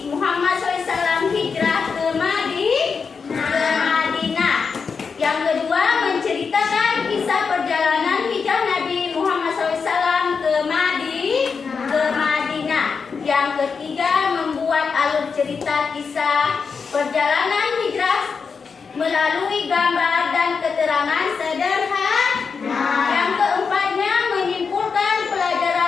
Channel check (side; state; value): right; quieter; 5.5 dB